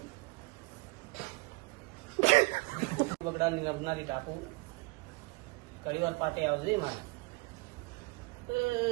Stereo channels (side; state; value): left; quieter; 26.5 dB